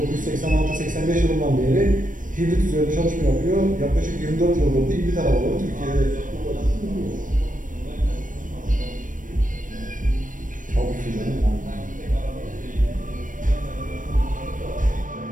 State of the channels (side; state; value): left; late; 0.38 ms